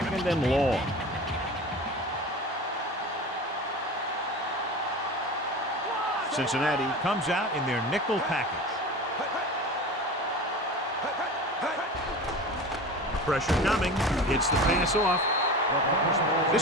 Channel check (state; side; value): normal; both; correlation 0.32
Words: and long. Cincinnati comes out in their nickel package. Pressure coming. Gets the pass off.